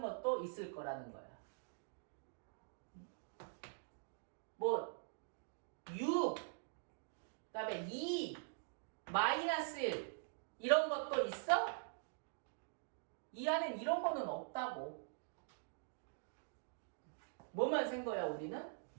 것도 있을 거라는 거야. 뭐 6, 그다음에 2, 마이너스 1 이런 것도 있어? 이 안엔 이런 거는 없다고. 뭐만 센 거야 우리는?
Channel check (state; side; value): silent; left; digital silence